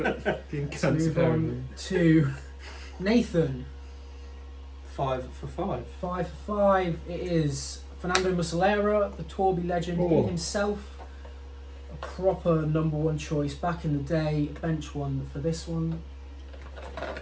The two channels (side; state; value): both; identical; correlation 1.00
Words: fucking Let's cunts move on to Nathan. 5 for 5. 5 for 5. It is Fernando Muslera, the Torbi legend Oh. himself. A proper number 1 choice back in the day. Bench one for this one.